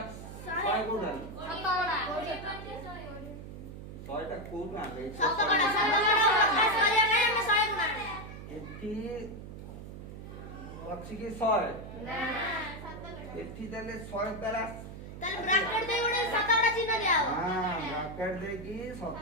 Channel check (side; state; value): right; noise; hum, 12 dB below the sound